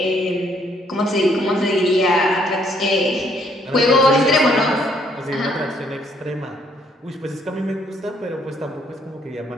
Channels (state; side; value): normal; both; correlation 0.67